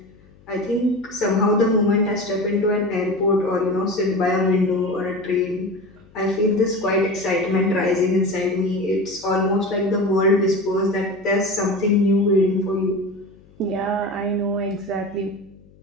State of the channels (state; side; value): noise; left; hum, 27 dB below the sound